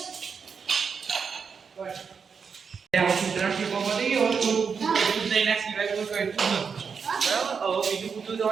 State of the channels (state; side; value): quieter; left; 6.0 dB